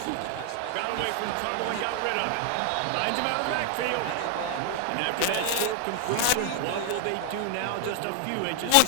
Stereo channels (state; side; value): different; both; correlation 0.00